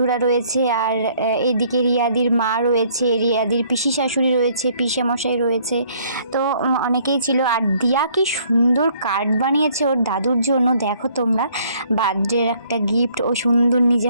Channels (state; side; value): inverted; both; correlation -0.62